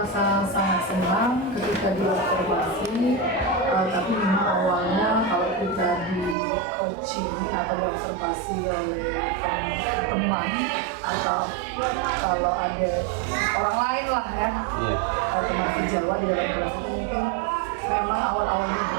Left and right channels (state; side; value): drops out; left; at 6.4 s